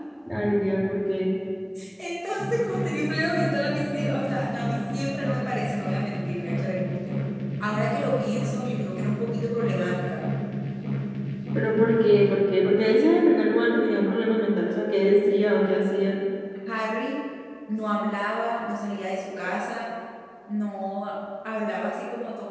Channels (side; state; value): both; identical; correlation 1.00